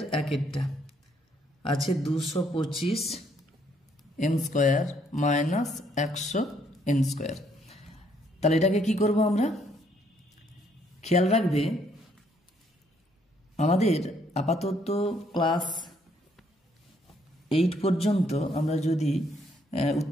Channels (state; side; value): normal; both; correlation 0.69